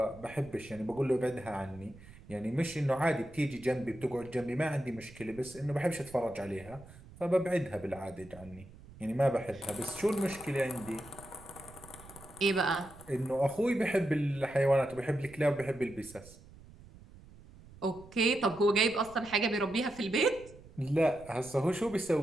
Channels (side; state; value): right; noise; rumble, 20 dB below the sound